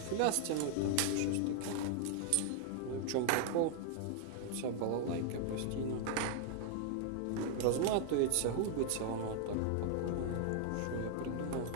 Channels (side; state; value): both; different; correlation 0.00